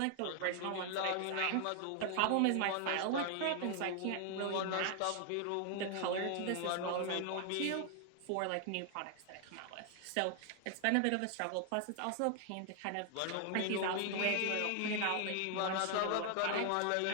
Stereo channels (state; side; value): different; both; correlation 0.00